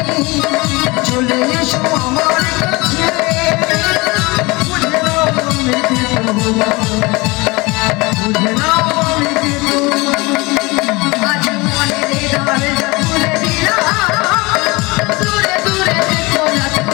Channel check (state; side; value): quieter; right; 24.1 dB